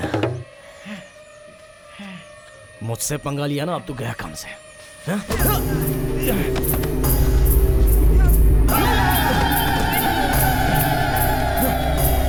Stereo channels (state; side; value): identical; both; correlation 1.00